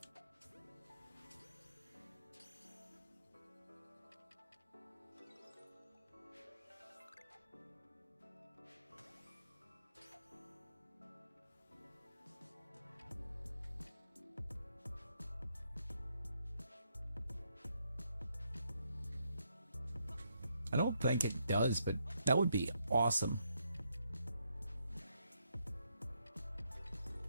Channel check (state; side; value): inverted; both; correlation -0.77